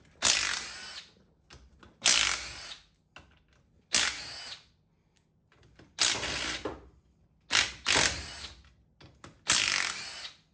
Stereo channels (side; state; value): both; identical; correlation 1.00